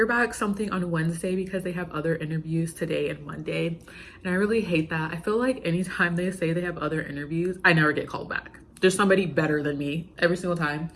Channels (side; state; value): both; identical; correlation 1.00